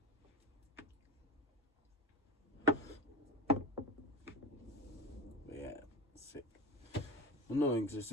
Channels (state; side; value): normal; both; correlation 0.26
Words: But yeah, sick. Annoying because it's